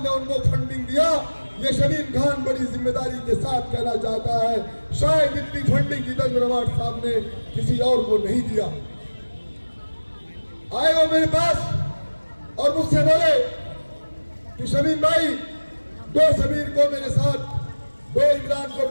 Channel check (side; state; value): both; inverted; correlation -1.00